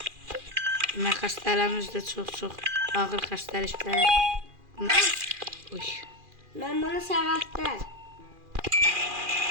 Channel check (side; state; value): left; late; 2.4 ms